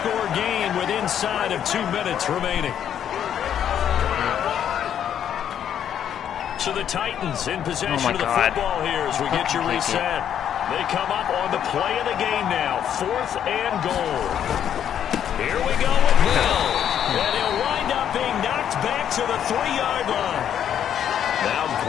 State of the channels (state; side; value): quieter; right; 9.5 dB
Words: game with inside of 2 minutes remaining. So the Titans in possession of the football here as we get you reset. They come up on the play of the game now. 4th and goal. Here we go with Hill. And he'll wind up being knocked back to the 3-yard line. Now